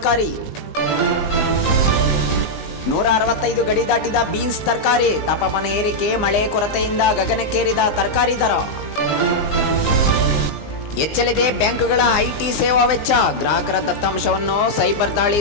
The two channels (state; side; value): late; right; 19 ms